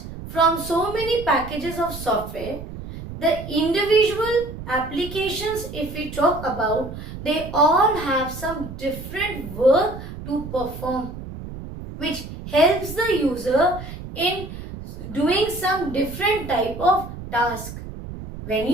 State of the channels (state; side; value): noise; right; rumble, 11 dB below the sound